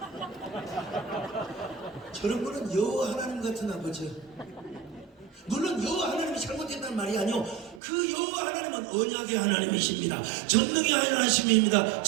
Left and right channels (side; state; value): left; drops out; at 7.8 s